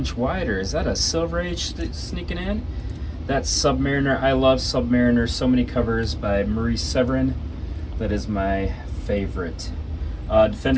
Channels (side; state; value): both; identical; correlation 1.00